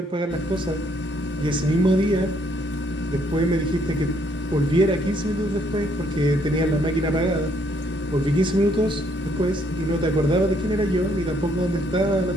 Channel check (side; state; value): both; normal; correlation 0.69